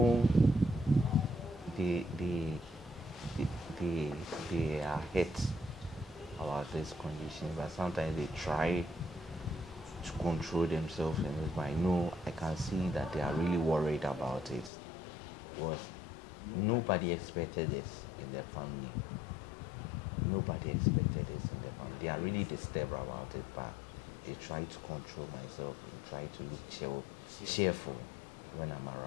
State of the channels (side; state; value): right; drops out; at 14.7 s